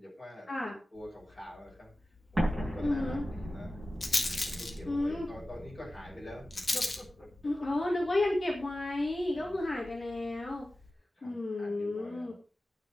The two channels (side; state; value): both; normal; correlation 0.95